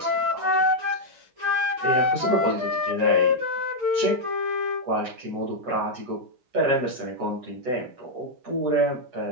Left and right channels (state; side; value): late; left; 7.7 ms